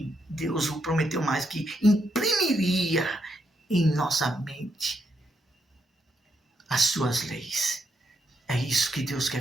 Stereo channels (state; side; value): normal; both; correlation 0.79